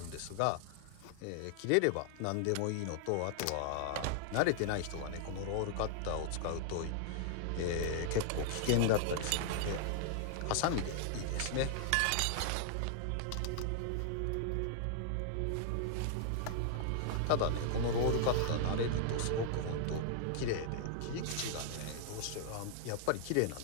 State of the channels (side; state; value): both; different; correlation -0.01